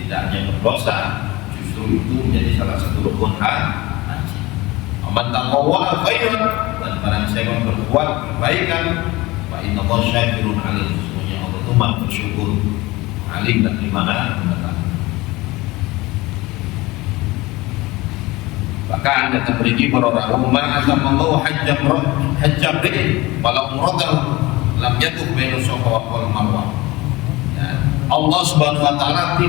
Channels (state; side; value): quieter; right; 20.8 dB